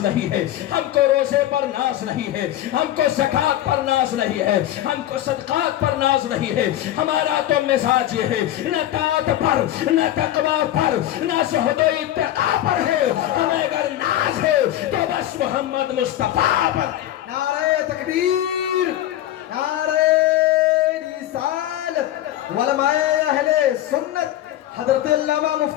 نہیں ہے، ہم کو روزے پر ناز نہیں ہے، ہم کو زکوٰۃ پر ناز نہیں ہے، ہم کو صدقات پر ناز نہیں ہے۔ ہمارا تو مزاج یہ ہے، نہ طاعت پر، نہ تقویٰ پر، نہ زہد و اتقیٰ پر ہے، ہمیں اگر ناز ہے تو بس محمد مصطفیٰ پر۔ نعرہ تکبیر، نعرہ رسالت، علماء اہل سنت، حضرت علامہ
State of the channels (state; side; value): quieter; right; 13.2 dB